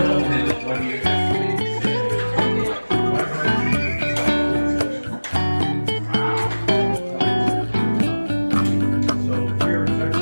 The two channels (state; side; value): inverted; both; correlation -1.00